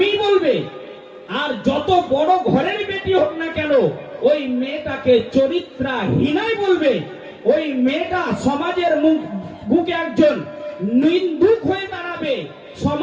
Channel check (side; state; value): both; identical; correlation 1.00